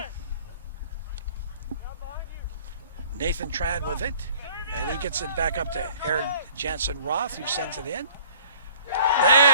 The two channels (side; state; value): both; inverted; correlation -0.52